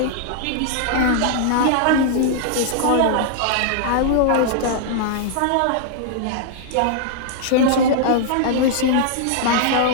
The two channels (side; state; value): both; different; correlation -0.01